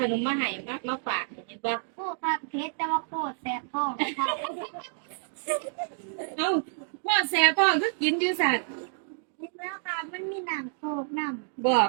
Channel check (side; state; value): left; silent; digital silence